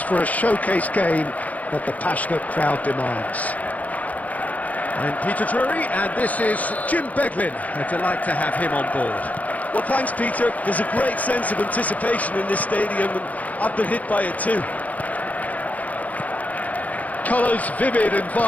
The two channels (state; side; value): late; right; 0.074 ms